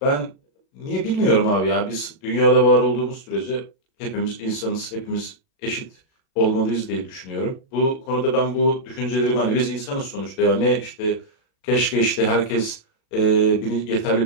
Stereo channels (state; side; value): late; right; 37 ms